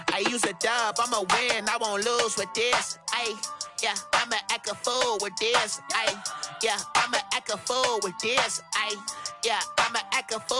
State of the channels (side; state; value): both; identical; correlation 1.00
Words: use a dub, I'ma win, I won't lose with this. Yeah, I'ma act a fool with this. Yeah, I'ma act a fool with this. Yeah, I'ma act a